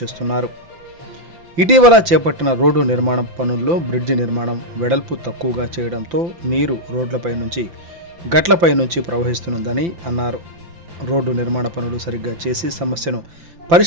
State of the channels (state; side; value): late; left; 5.9 ms